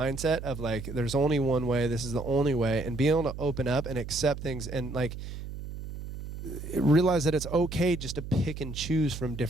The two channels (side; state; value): right; noise; hum, 9 dB below the sound